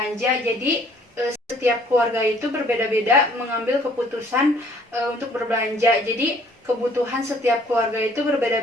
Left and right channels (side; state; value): both; normal; correlation 0.59